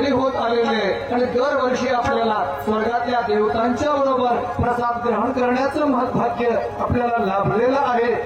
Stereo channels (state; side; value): identical; both; correlation 1.00